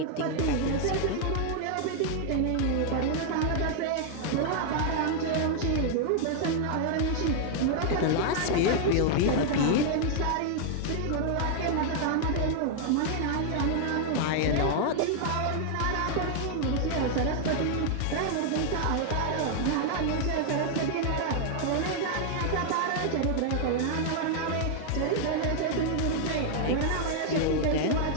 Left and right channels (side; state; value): both; different; correlation 0.00